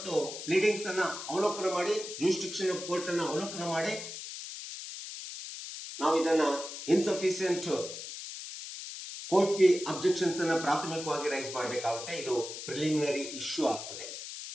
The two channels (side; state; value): left; noise; hiss, 9 dB below the sound